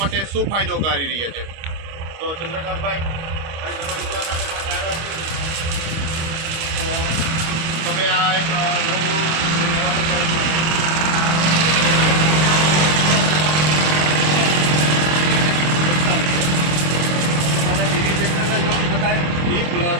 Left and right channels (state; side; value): late; left; 25 ms